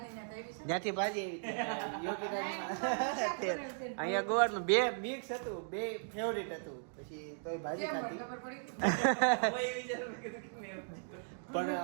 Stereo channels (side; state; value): left; silent; digital silence